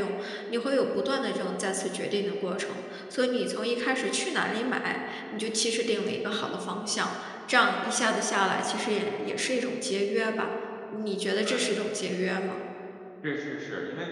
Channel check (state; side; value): identical; both; correlation 1.00